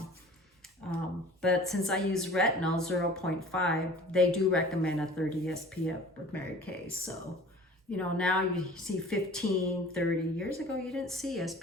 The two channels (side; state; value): both; normal; correlation 0.45